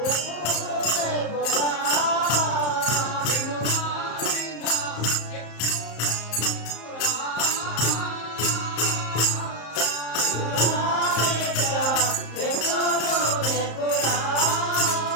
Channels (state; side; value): late; right; 34 ms